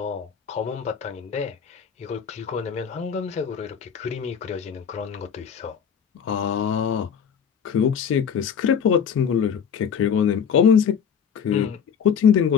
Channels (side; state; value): right; quieter; 7.4 dB